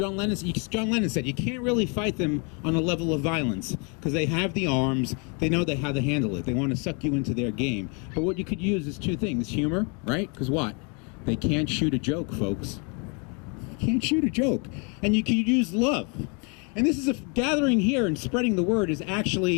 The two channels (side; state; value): right; quieter; 34.9 dB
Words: Lennon said, you can't really fight them on a level of violence because they have the arms, they know how to handle it. They want to suck you into their game. But what you could use is two things, humor, right? Because what? They can't shoot a joke, folks. Can't shoot a joke. And you can use love. And this is a gathering here, and spreading the word is